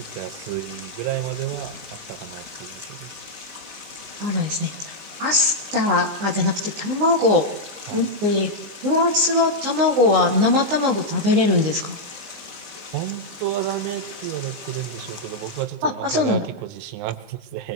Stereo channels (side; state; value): left; late; 19 ms